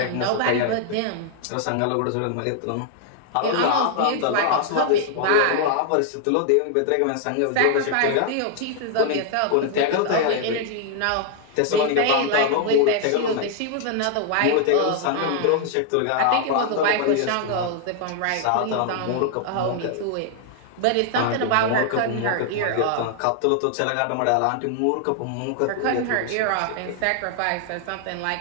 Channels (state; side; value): different; both; correlation 0.00